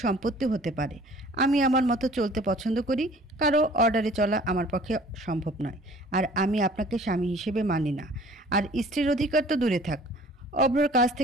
সম্পত্তি হতে পারে। আমি আমার মতো চলতে পছন্দ করি। কারো অর্ডারে চলা আমার পক্ষে সম্ভব নয়। আর আমি আপনাকে স্বামী হিসেবে মানি না। আর স্ত্রীর অধিকার তো দূরে থাক। অভ্রর কাছ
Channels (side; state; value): both; normal; correlation 0.51